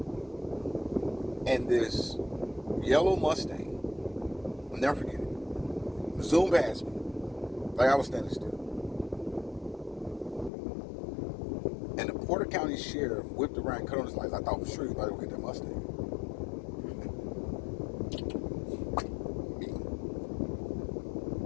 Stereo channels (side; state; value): right; drops out; at 10.5 s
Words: and this yellow Mustang, I'll never forget it, zoomed past me like I was standing still. And the Porter County Sheriff whipped around, cut on his lights. I thought for sure he was about to go get that Mustang.